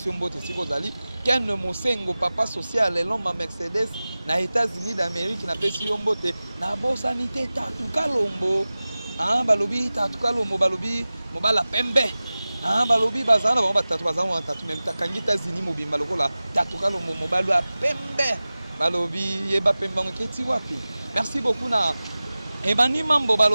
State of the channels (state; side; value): inverted; both; correlation -0.97